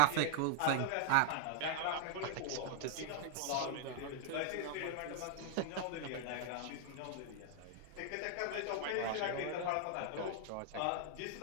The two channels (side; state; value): both; different; correlation 0.00